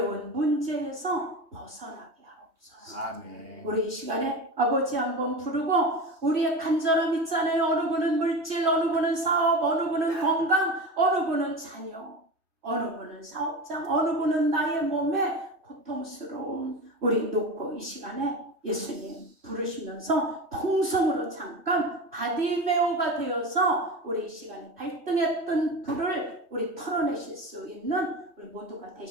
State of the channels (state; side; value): late; left; 2.6 ms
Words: 문제에서 벗어나게 하옵소서. 아멘. 우리 이 시간에 아버지 한번 부르고 우리의 간절함 있잖아요. 어느 분은 물질, 어느 분은 사업, 어느 분은 건강, 어느 분은 자녀, 어느 분은 사업장, 어느 분은 나의 몸에 고통스러움 우리 놓고 이 시간에 예수님 부르시면서 통성으로 잠깐 바디메오가 되어서 우리 이 시간에 발등에 뜬 불을 우리 털어내실 수 있는 우리 모두가